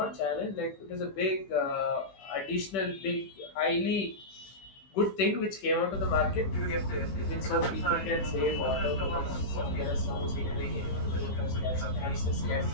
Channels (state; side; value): late; right; 15 ms